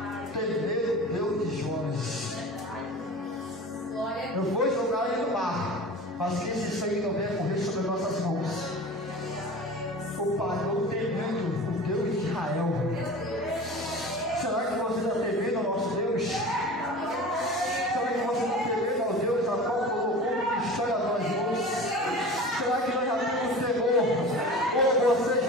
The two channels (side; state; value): both; normal; correlation 0.36